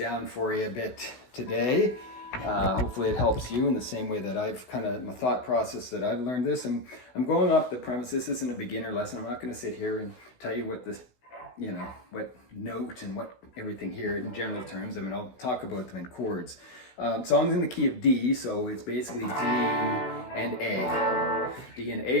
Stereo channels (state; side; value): late; right; 16 ms